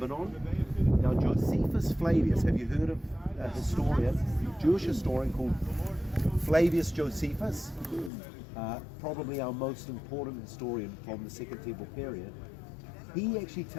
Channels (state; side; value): drops out; right; at 8.1 s